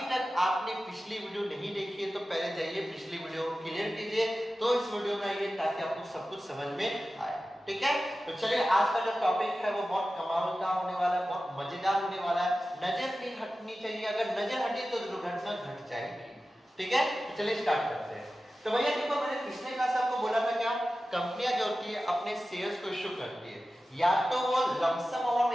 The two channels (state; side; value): normal; both; correlation 0.94